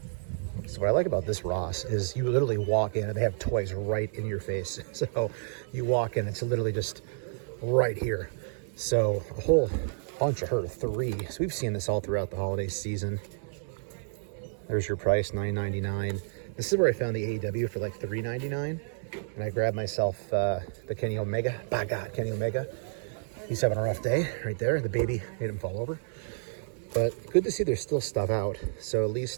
So what I like about this Ross is you literally walk in and they have toys right in your face. So you walk in, it's literally just right here. So a whole bunch of her, 3. So we've seen this all throughout the holiday season. There's your price, $9.99. This is where I found the AEW for like $3.99. And I grabbed myself the Kenny Omega. By God, Kenny Omega. He's having a rough day right there. The baby made him fall over. But good to see there's still stuff out. So at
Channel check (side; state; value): left; silent; digital silence